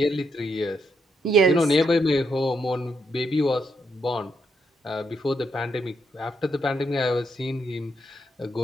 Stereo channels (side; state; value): both; normal; correlation 0.79